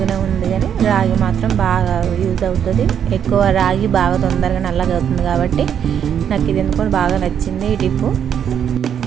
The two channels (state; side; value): quieter; left; 8.6 dB